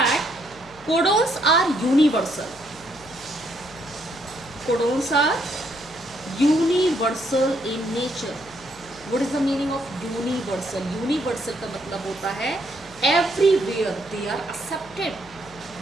codons are universal. Codons are universal in nature. What is the meaning of universal? Universal का मतलब होता है everywhere they are accepted.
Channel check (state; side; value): noise; left; hum, 22 dB below the sound